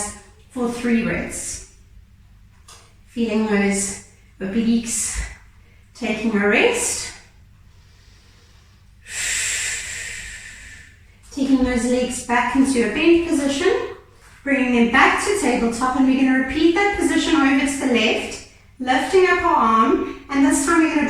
for 3 breaths. Feeling those obliques taking a rest. Taking those legs back into a bent position, bringing them back to tabletop, and we're going to repeat that position over to the left, lifting up our arm, and this time we're going to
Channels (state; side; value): identical; both; correlation 1.00